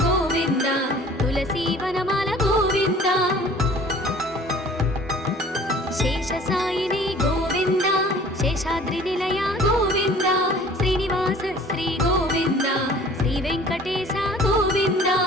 गोविन्द तुलसीवनमाल गोविन्द शेषसायिनी गोविन्द शेषाद्रिनिलय गोविन्द श्रीनिवास श्री गोविन्द श्रीवेङ्कटेश गोविन्द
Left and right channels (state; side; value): normal; both; correlation 0.50